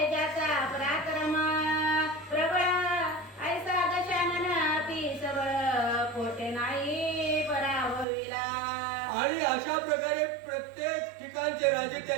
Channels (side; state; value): left; drops out; at 8.1 s